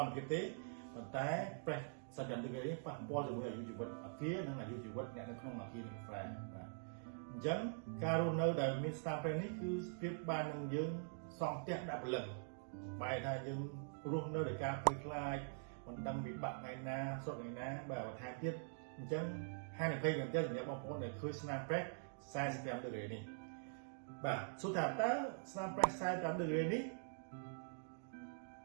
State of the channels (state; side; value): silent; left; digital silence